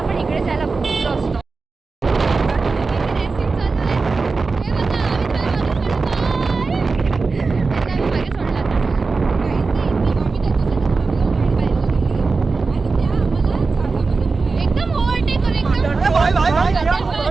इकडे जायला खूप असतो.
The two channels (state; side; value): quieter; left; 4.2 dB